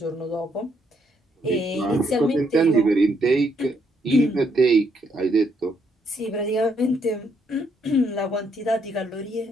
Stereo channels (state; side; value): normal; both; correlation 0.73